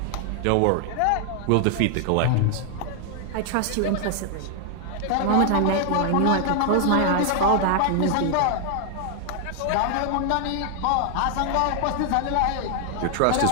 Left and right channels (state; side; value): different; both; correlation 0.00